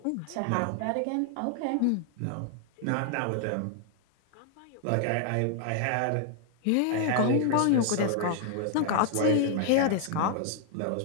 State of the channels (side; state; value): both; different; correlation 0.00